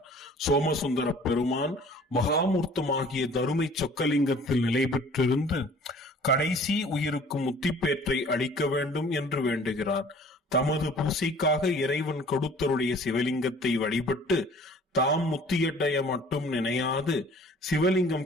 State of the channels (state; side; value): normal; both; correlation 0.50